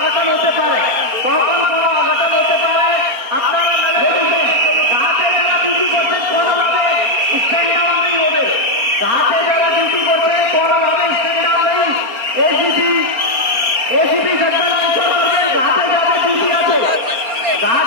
হতে পারে, আপনারা ঘাটে যারা ডিউটি করছেন কোনোভাবে স্ট্যান্ড ডাউন নেই হবে, ঘাটে যারা ডিউটি করছেন কোনোভাবে স্ট্যান্ড ডাউন নেই। এসিপি সেক্টর অঞ্চল করবেন, ঘাটে যাদের ডিউটি আছে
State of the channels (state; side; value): late; left; 4.3 ms